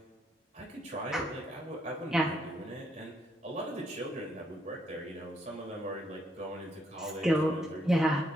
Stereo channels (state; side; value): normal; both; correlation 0.74